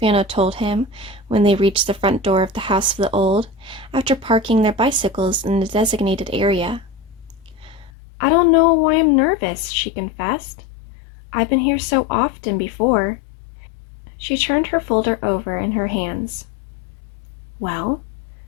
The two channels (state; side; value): drops out; right; at 7.9 s